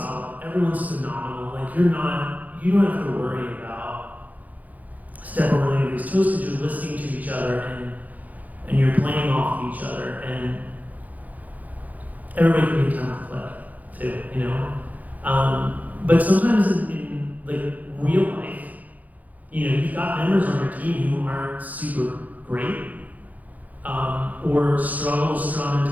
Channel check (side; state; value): left; late; 0.079 ms